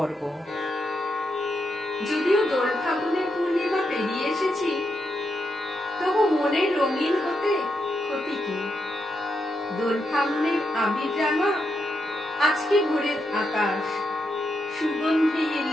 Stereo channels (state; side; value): normal; both; correlation 0.83